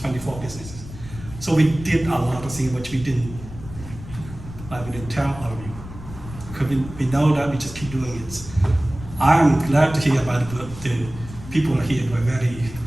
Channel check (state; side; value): noise; left; rumble, 14 dB below the sound